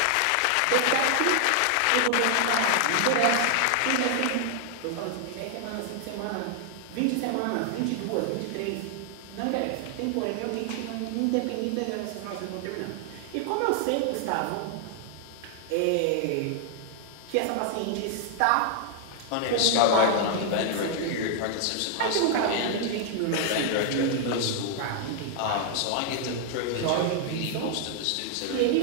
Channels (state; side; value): different; both; correlation 0.00